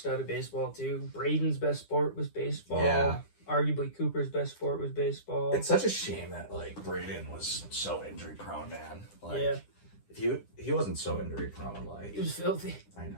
of baseball, too. Braden's best sport was baseball. Yeah. Arguably Cooper's best sport was baseball. It's such a shame that, like, Braden was so injury-prone, man. Like, if he wasn't so injury-prone, like... He was filthy. I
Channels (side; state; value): right; late; 10 ms